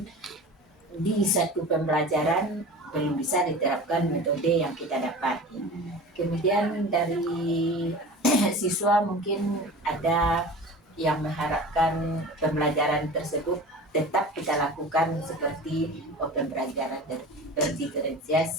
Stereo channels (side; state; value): both; normal; correlation 0.36